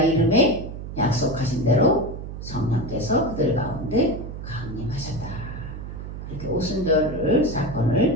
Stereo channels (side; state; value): right; noise; hum, 9 dB below the sound